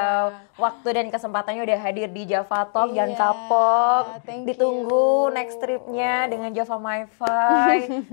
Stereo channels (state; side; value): silent; right; digital silence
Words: waktu dan kesempatannya udah hadir di Java Talk. Jangan kapok, ditunggu next tripnya dengan Java MiFi